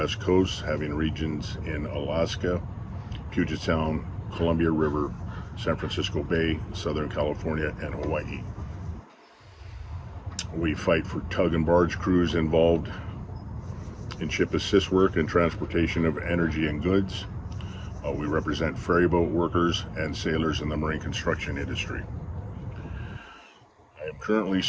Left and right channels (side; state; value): both; identical; correlation 1.00